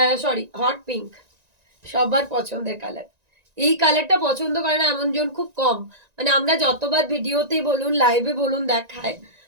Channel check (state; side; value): late; left; 1.9 ms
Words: সরি, হট পিঙ্ক, সবার পছন্দের কালার। এই কালারটা পছন্দ করে না এমন জন খুব কম। মানে আমরা যতবার ভিডিওতে বলুন লাইভে বলুন দেখায়